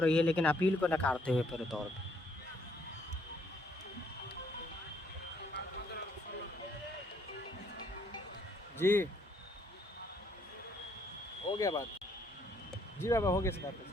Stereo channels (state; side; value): normal; both; correlation 0.68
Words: है, लेकिन अपील को नकारते हुए पूरे तौर पे। जी हो गया बात। जी बाबा हो गया इस बात पे।